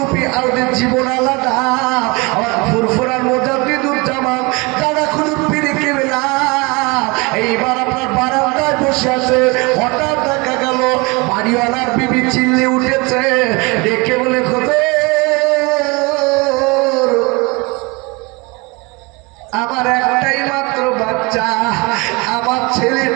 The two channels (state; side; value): quieter; left; 26.8 dB